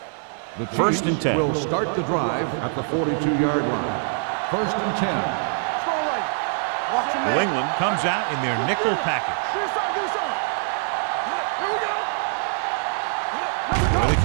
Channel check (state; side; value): silent; left; digital silence